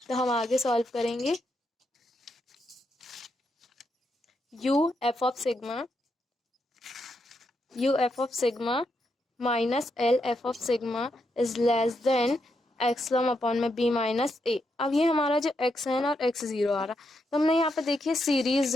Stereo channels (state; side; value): normal; both; correlation 0.81